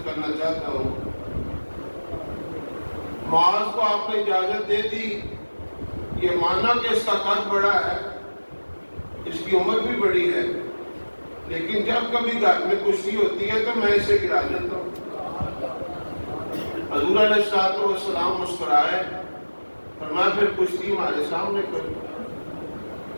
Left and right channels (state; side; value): inverted; both; correlation -1.00